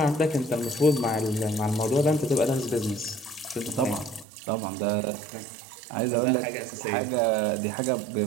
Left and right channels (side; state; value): left; drops out; at 4.2 s